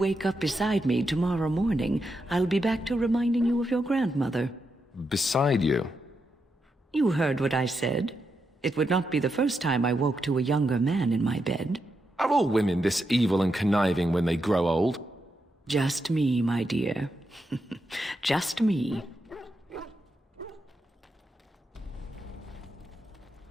up beside me tomorrow morning, I'll be back to reminding you of your grandmother. Beside you? You heard what I said. It would not be the first time I woke to a younger man in my bed. Are all women this evil and conniving when they grow old? Just me, my dear. Just me.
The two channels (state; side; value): normal; both; correlation 0.84